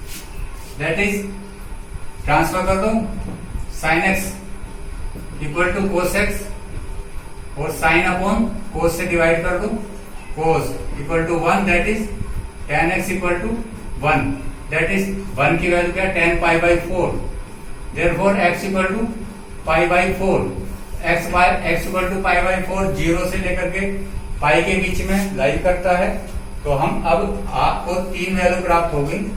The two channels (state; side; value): identical; both; correlation 1.00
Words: that is transfer कर दो, sine x equal to cos x और sine upon cos से divide कर दो, cos equal to 1, that is tan x equal to 1, that is 1 की value क्या, tan pi by 4, therefore x equal to pi by 4, x equal to pi by 4 0 से लेकर के पाई के बीच में लाई करता है। तो हम अब आपको 3 वैल्यू प्राप्त होगी,